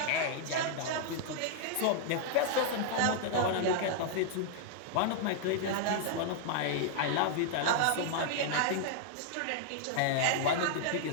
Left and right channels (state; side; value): different; both; correlation -0.01